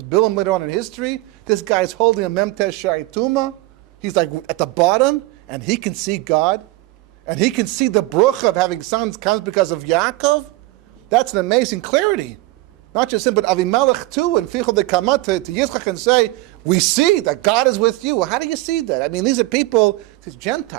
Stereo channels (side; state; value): left; quieter; 19.7 dB